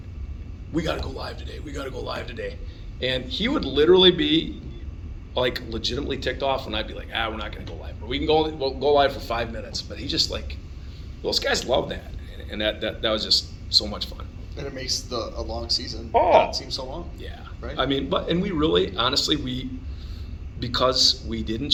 we got to go live today. And he would literally be, like, legitimately ticked off when I'd be like, we're not going to go live. Or we'll go live for 5 minutes. But he's just like, those guys love that. And that was just so much fun. And it makes a long season not seem so long. Yeah. Right? I mean, and we really, honestly, because we didn't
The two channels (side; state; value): both; identical; correlation 1.00